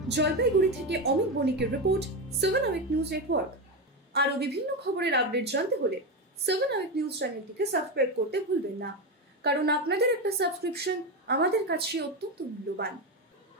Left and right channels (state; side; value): normal; both; correlation 0.14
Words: জলপাইগুড়ি থেকে অমিত বণিকের রিপোর্ট, 7 আওয়ার নিউজ নেটওয়ার্ক। আরো বিভিন্ন খবরের আপডেট জানতে হলে 7 আওয়ার নিউজ চ্যানেলটিকে সাবস্ক্রাইব করতে ভুলবেন না, কারণ আপনাদের একটা সাবস্ক্রিপশন আমাদের কাছে অত্যন্ত মূল্যবান।